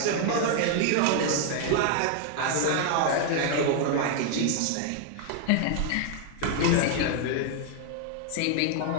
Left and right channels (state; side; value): different; both; correlation 0.00